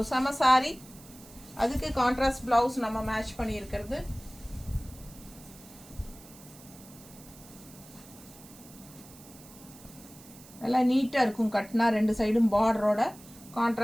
செம சாரி. அதுக்கு கான்ட்ராஸ்ட் ப்ளவுஸ் நம்ம மேட்ச் பண்ணியிருக்கிறது. நல்லா நீட்டாக இருக்கும். கட்டினா 2 சைடும் பார்டரோட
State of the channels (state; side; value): noise; right; hiss, 20 dB below the sound